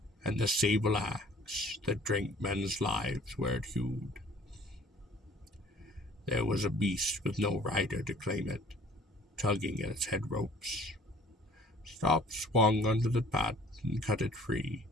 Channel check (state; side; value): normal; both; correlation 0.53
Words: and the sable axe that drank men's lives where it hewed. There was a beast with no rider to claim it, tugging at its head ropes. Stop swung under the path and cut it free.